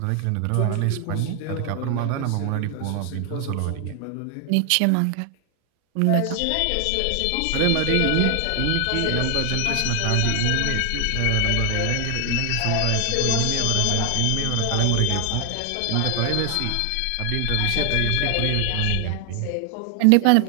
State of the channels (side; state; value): both; different; correlation 0.00